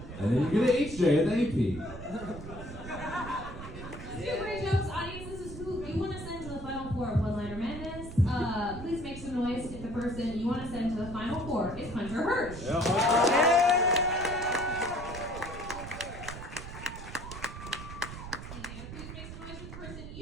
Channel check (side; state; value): right; noise; rumble, 11 dB below the sound